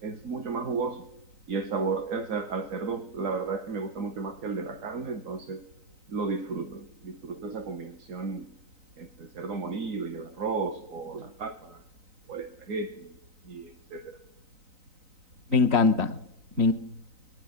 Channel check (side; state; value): left; late; 3.9 ms